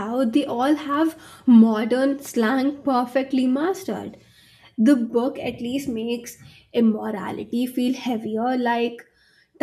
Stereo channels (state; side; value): identical; both; correlation 1.00